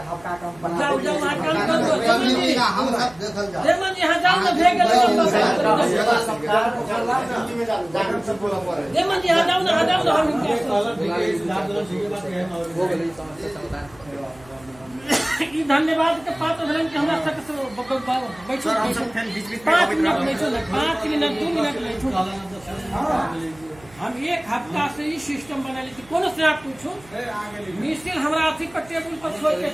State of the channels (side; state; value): right; noise; hum, 24 dB below the sound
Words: हफ्ता कम बना जाओ जाओ वहां काम कर हम सब देखल जा देमन यहां जाओ ना भेग गेल सरकार जिम्मेदार जागरूक सब बोला पड़े। देमन यहां जाओ ना हम ई धन्यवाद के पात्र भेलन कि हमरा तक बैठो हम सब फिर बीच-बीच 5 मिनट बैठो ना, 5 मिनट 2 मिनट बैठो। हम एक हफ्ता से ही सिस्टम बना ली कोनो से आप पूछो मिसिल हमरा अथी पर टेबुल पर छोड़ के